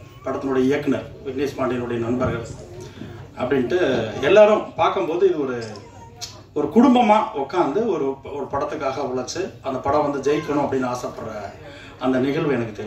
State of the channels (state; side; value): identical; both; correlation 1.00